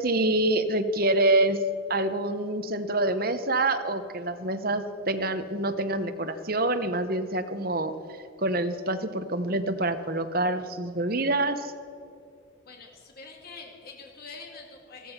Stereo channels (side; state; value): both; normal; correlation -0.12